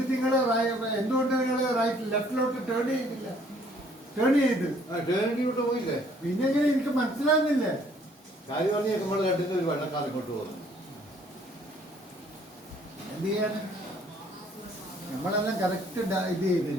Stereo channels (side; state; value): both; normal; correlation 0.61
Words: നിങ്ങൾ എന്തുകൊണ്ട് നിങ്ങൾ റൈറ്റ് ലെഫ്റ്റിലോട്ട് ടേൺ ചെയ്തില്ല? ടേൺ ചെയ്ത് ടേണിലോട്ട് പോയില്ലേ? പിന്നെ എങ്ങനെ എനിക്ക് മനസ്സിലാകുന്നില്ലേ? കാര്യം പറഞ്ഞ് നമ്മൾ കണ്ടിട്ട് ഒരു വെള്ളക്കാർ ഇങ്ങോട്ട് പോകുന്നു. എന്ത് ചെയ്യാണ്? നമ്മളെല്ലാം കറക്റ്റ് ഇത്